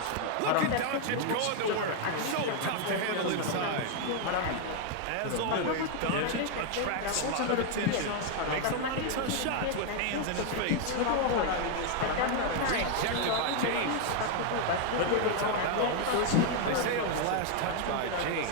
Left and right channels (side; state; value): both; different; correlation 0.00